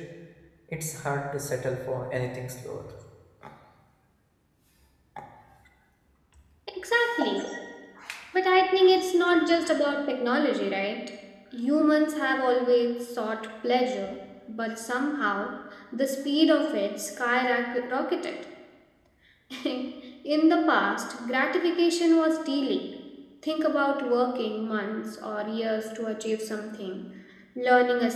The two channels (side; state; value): both; identical; correlation 1.00